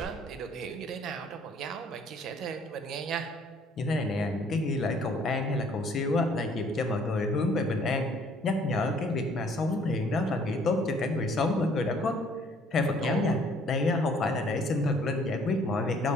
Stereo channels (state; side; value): normal; both; correlation 0.60